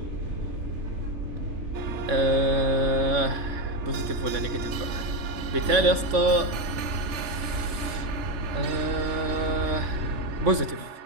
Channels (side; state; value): left; late; 3.4 ms